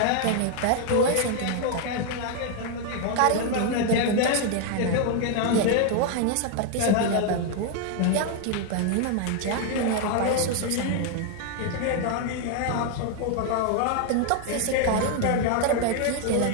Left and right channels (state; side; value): different; both; correlation 0.00